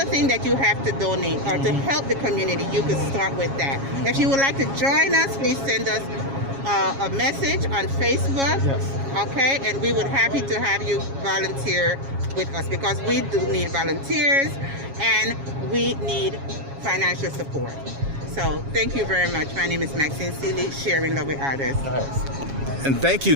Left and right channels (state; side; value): late; left; 7.3 ms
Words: thing that you have to donate or to help the community, you could start with that. If you would like to join us, please send us a message on Facebook. Yes. Okay, and we would happy to have you volunteer with us, because we do need volunteers and we need financial support. So thank you very much. My name is Maxine, Sharing Love with Others. Nice. And thank you.